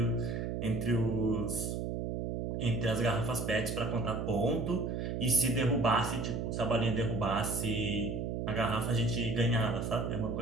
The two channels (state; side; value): noise; right; hum, 2 dB below the sound